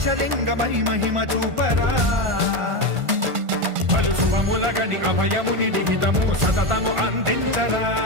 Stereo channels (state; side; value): late; left; 1.5 ms